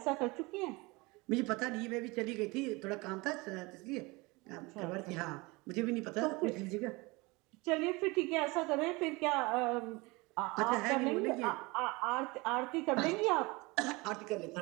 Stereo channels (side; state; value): left; quieter; 24.5 dB